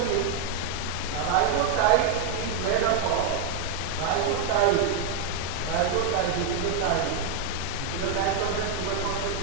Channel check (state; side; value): quieter; left; 5.3 dB